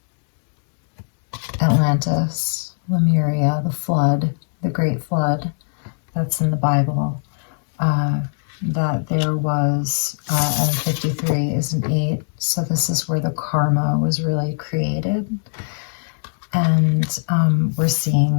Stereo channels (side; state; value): right; silent; digital silence